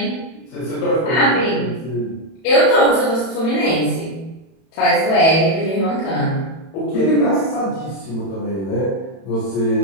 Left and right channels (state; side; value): late; right; 31 ms